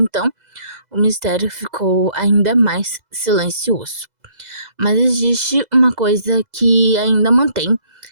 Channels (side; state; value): left; late; 2.0 ms